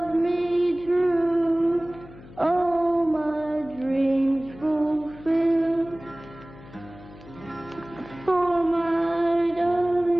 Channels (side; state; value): left; noise; hum, 19 dB below the sound